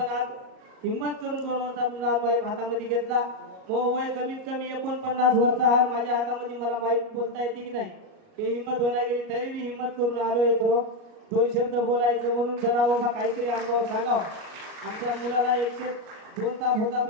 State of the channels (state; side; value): late; left; 38 ms